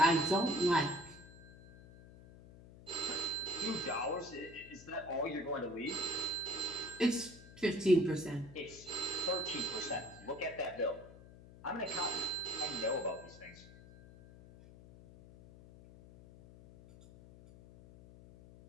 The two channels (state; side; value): noise; left; hum, 19 dB below the sound